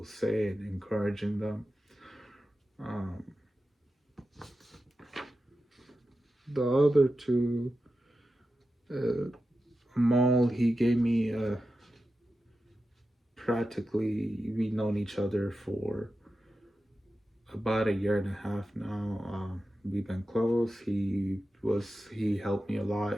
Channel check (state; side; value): normal; both; correlation 0.92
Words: say and encouraging them. Um, the other two, Amal, he gave me practically, we've known each other for about a year and a half now. We've been close. He helped me a